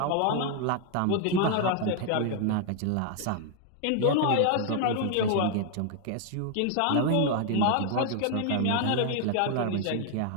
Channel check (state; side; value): different; both; correlation 0.00